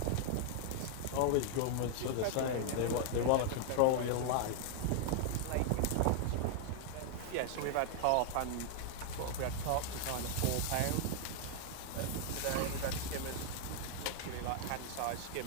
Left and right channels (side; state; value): both; different; correlation 0.00